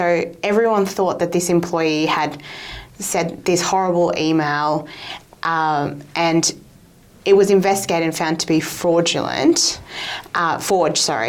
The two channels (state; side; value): identical; both; correlation 1.00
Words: everyone thought that this employee had said this horrible email, and it was investigated and found to be forged, and